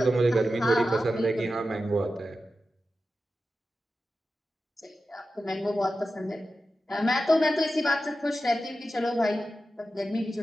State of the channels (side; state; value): both; normal; correlation 0.92